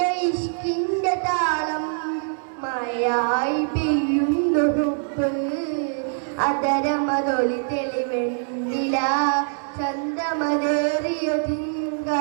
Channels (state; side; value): silent; left; 63 dB below the other